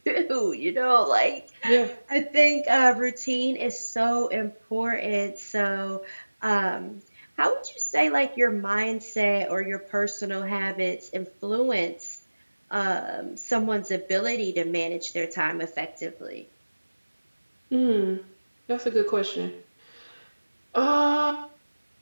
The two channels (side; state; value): both; inverted; correlation -1.00